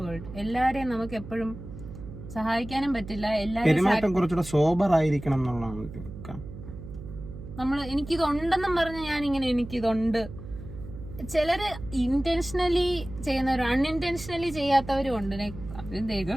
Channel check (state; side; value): noise; right; hum, 12 dB below the sound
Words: world. എല്ലാരെയും നമുക്ക് എപ്പോഴും സഹായിക്കാനും പറ്റില്ല. പെരുമാറ്റം കുറച്ചുകൂടെ സോബർ ആയിരിക്കണം എന്നുള്ളതാണ്. നമ്മള് എനിക്കിതുണ്ടെന്നും പറഞ്ഞ് ഞാൻ ഇങ്ങനെ എനിക്കിതുണ്ട്. ചിലര് ഇന്റൻഷനലി ചെയ്യുന്നവരും അൺഇന്റൻഷനലി ചെയ്യാത്തവരും ഉണ്ട്.